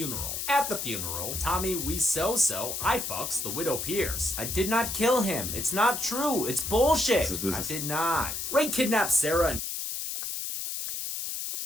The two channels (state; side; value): noise; left; hiss, 4 dB below the sound